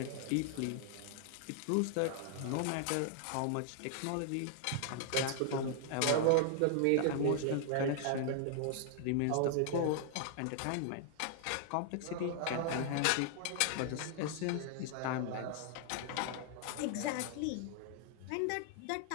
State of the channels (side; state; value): both; different; correlation -0.01